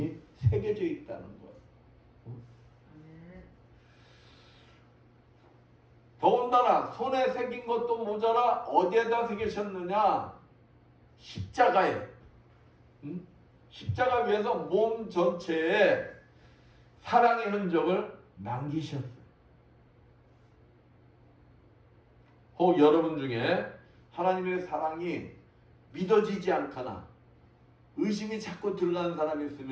새겨져 있다는 거예요. 더군다나 손에 새긴 것도 모자라 어디에다 새기셨느냐? 십자가에. 십자가 위에서 몸 전체에 사랑의 흔적을 남기셨어요. 혹 여러분 중에 하나님의 사랑이 믿어지지 않거나 의심이 자꾸 들어가는 사람이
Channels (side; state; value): both; identical; correlation 1.00